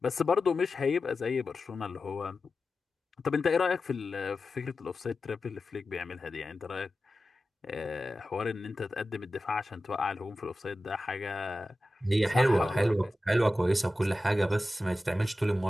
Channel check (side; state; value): both; normal; correlation 0.93